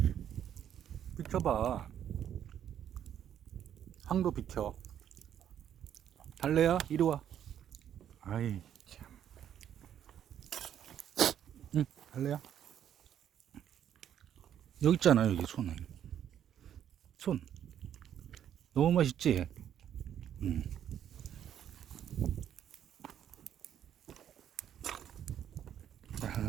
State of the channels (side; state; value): left; quieter; 9.9 dB